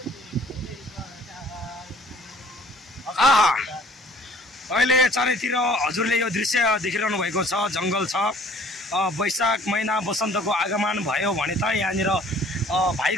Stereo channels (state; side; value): normal; both; correlation 0.54